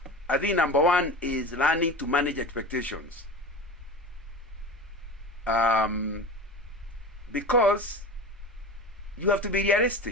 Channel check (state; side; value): normal; both; correlation 0.30